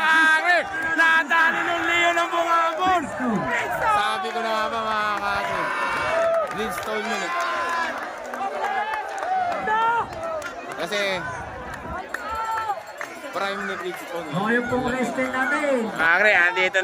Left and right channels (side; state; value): both; identical; correlation 1.00